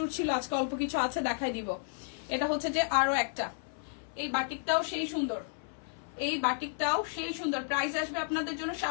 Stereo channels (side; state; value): right; silent; 56 dB below the other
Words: ছিল, আজকে অল্প কিছু আছে, দেখাই দিব। এটা হচ্ছে যে আরো একটা। এই বাটিকটাও সেই সুন্দর, এই বাটিকটাও সেই সুন্দর। প্রাইস আসবে আপনাদের জন্য